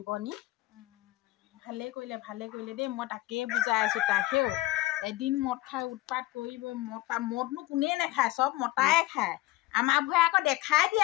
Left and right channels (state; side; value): quieter; right; 17.8 dB